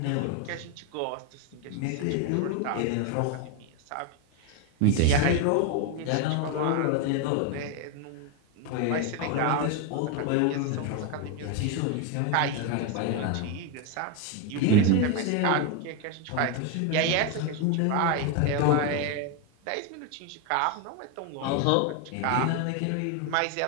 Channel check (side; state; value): both; different; correlation 0.01